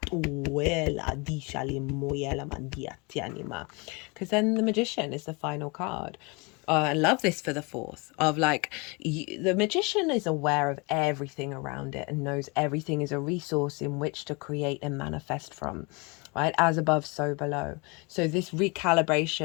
then the Magician is the final card. I love this for the fourth of like the Magician is aware of everything around it and knows everything is a resource in which to create and manifest from, right? As above, so below. So this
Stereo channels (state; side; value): quieter; right; 29.3 dB